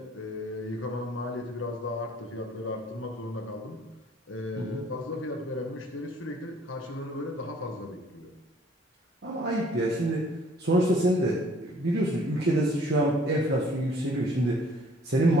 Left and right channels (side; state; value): both; normal; correlation 0.58